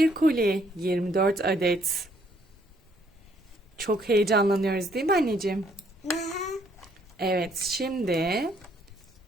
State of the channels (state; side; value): normal; both; correlation 0.67